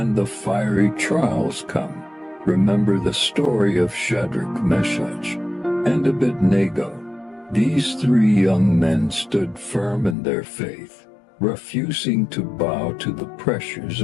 the fiery trials come, remember the story of Shadrach, Meshach, and Abednego. These 3 young men stood firm in their faith, refusing to bow to the pressures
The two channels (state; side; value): drops out; right; at 10.2 s